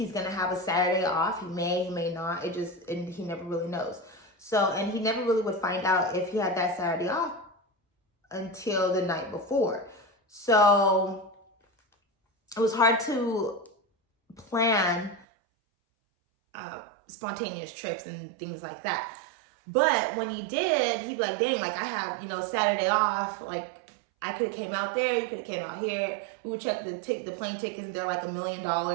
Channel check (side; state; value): left; drops out; at 15.2 s